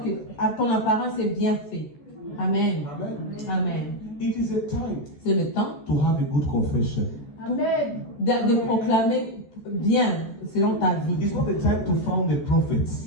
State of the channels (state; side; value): late; right; 14 ms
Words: que à ton apparence est bien fait. Amen. Amen. Amen. It is a time C'est le temps to have a good confession. de proclamer bien selon ta vie. It's not a time to found the